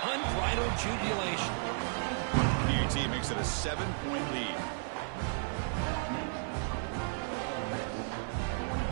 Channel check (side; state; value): left; silent; 55 dB below the other